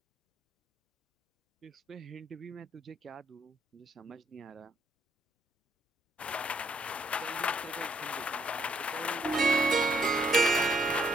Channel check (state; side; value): normal; both; correlation 0.71